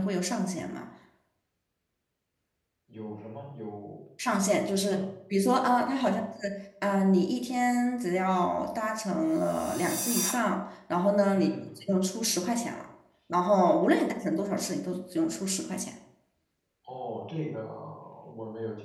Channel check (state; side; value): identical; both; correlation 1.00